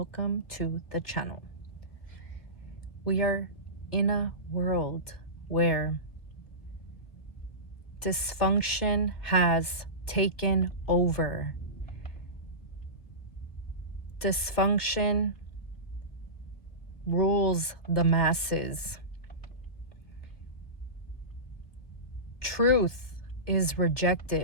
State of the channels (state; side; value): late; right; 1.8 ms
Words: to the channel. We are in a world where dysfunction has taken over. Dysfunction rules the masses. Truth is